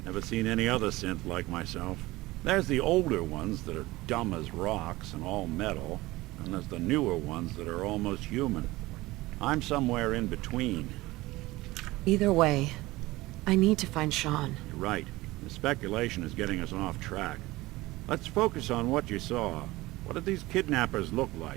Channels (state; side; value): quieter; left; 19.4 dB